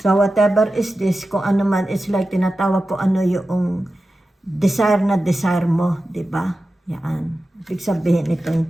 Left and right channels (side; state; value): both; normal; correlation 0.93